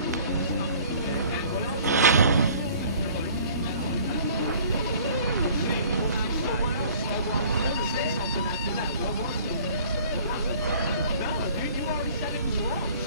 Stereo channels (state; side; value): inverted; both; correlation -0.50